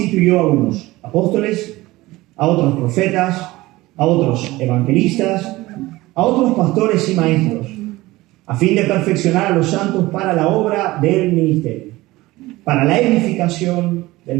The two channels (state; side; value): quieter; left; 19.1 dB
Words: a unos apóstoles, a otros profetas, a otros evangelistas, a otros pastores y maestros, a fin de perfeccionar a los santos para la obra del ministerio, para la edificación